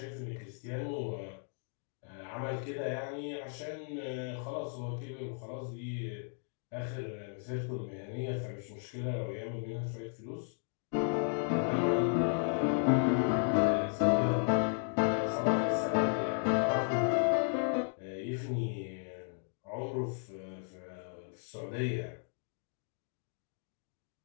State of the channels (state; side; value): silent; right; 55 dB below the other